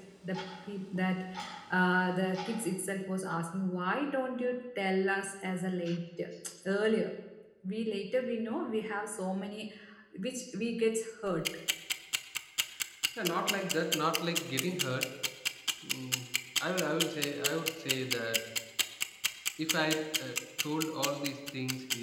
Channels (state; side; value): identical; both; correlation 1.00